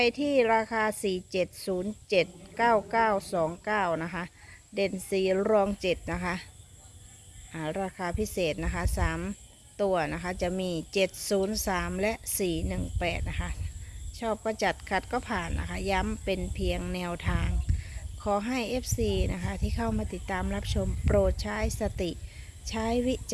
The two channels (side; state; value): both; identical; correlation 1.00